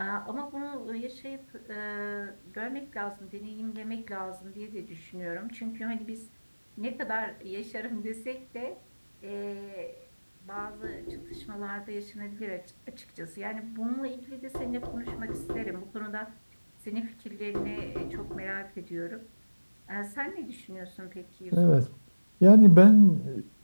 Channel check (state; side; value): inverted; both; correlation -1.00